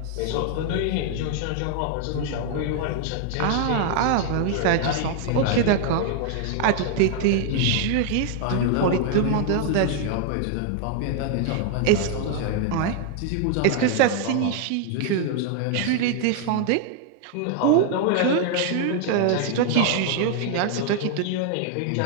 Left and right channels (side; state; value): both; different; correlation 0.00